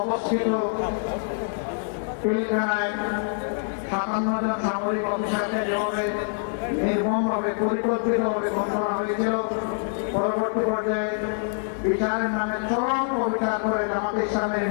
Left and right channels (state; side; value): silent; right; digital silence